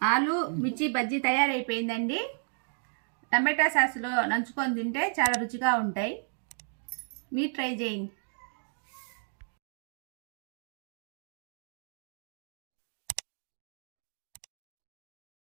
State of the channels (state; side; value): silent; left; digital silence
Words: ఆలు మిర్చి బజ్జీ తయారైపోయిందండి. టమాటా సాస్లో నంచుకొని తింటే చాలా రుచిగా ఉంటాయి. మీరు ట్రై చేయండి.